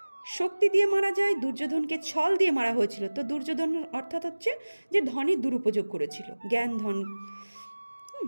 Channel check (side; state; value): both; inverted; correlation -1.00